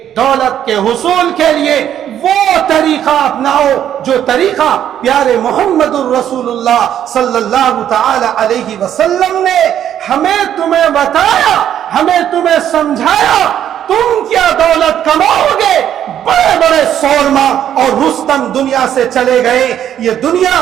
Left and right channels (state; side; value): quieter; left; 10.3 dB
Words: دولت کے حصول کے لیے وہ طریقہ اپناؤ جو طریقہ پیارے محمد الرسول اللہ صلی اللہ تعالی علیہ وسلم نے ہمیں تمہیں بتایا، ہمیں تمہیں سمجھایا۔ تم کیا دولت کماؤ گے؟ بڑے بڑے سورما اور رستم دنیا سے چلے گئے۔ یہ دنیا